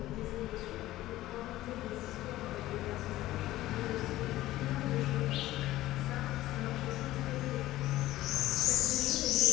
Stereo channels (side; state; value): right; quieter; 15.8 dB